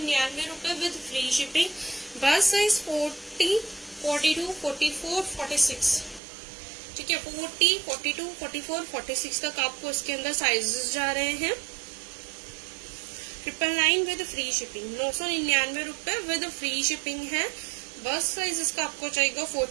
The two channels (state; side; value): drops out; left; at 6.2 s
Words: रुपए विद फ्री शिपिंग। बस साइज 40, 42, 44, 46, ठीक है। 40, 42, 44, 46 तक आपको इसके अंदर साइजेस जा रहे हैं। 999 विद फ्री शिपिंग, 999 रुपए विद फ्री शिपिंग है। बस साइज इसका आपको चाहिए